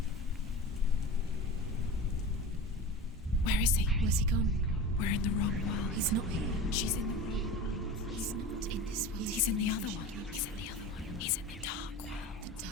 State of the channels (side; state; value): both; normal; correlation 0.32